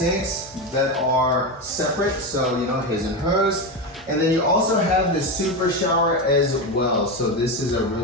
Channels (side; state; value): both; normal; correlation 0.15